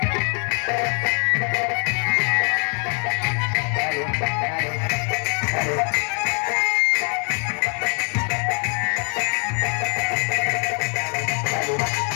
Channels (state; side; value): quieter; right; 39.5 dB